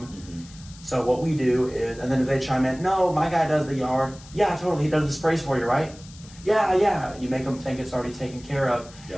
So what we do is, and then if they chime in, no, my guy does the yard. Yeah, totally, he does the sprays for you, right? Yeah. You make them think it's already taken care of.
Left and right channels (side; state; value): left; noise; hiss, 21 dB below the sound